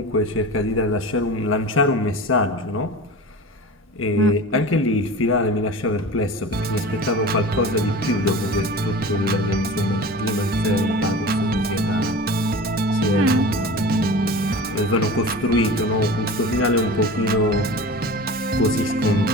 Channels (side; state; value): both; normal; correlation 0.34